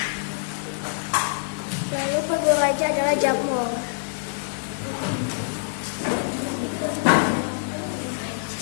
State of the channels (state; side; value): silent; right; digital silence